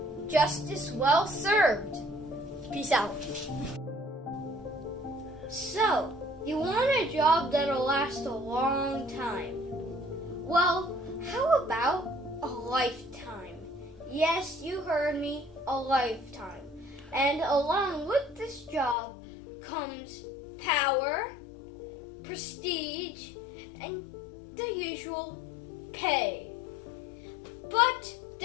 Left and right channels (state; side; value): drops out; right; at 18.9 s